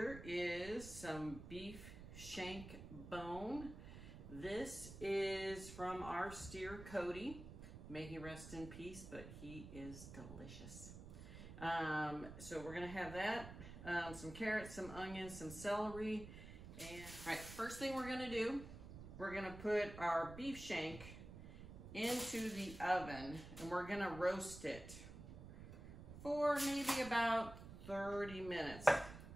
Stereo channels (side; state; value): right; noise; rumble, 12 dB below the sound